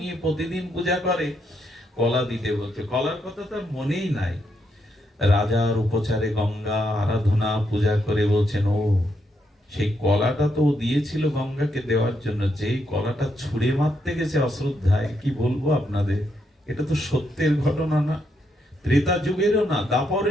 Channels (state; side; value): normal; both; correlation 0.79